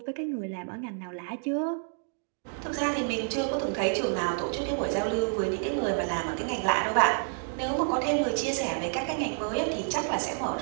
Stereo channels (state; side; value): silent; left; 58 dB below the other